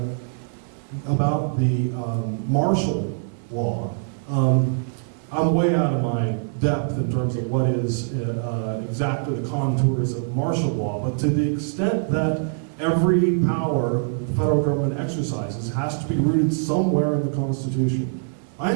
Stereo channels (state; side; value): silent; left; digital silence